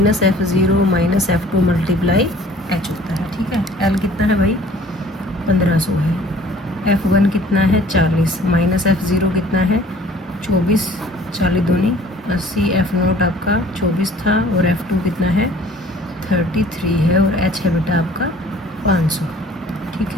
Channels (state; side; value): normal; both; correlation 0.52